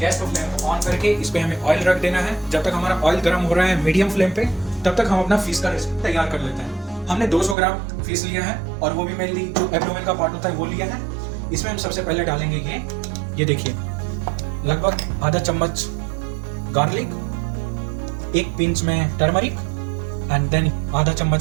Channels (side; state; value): left; drops out; at 7.6 s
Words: को फ्लेम को ऑन करके इस पे हमें ऑयल रख देना है। जब तक हमारा ऑयल गर्म हो रहा है मीडियम फ्लेम पे, तब तक हम अपना फिश का रेसिपी तैयार कर लेते हैं। हमने 200 ग्राम फिश लिया है और वो भी मेनली जो एब्डोमेन का पार्ट होता है वो लिया है। इसमें हम सबसे पहले डालेंगे ये देखिए लगभग आधा चम्मच गार्लिक, एक पिंच में टर्मरिक एंड देन आधा